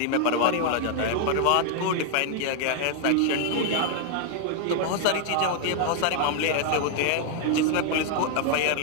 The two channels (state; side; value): different; both; correlation 0.00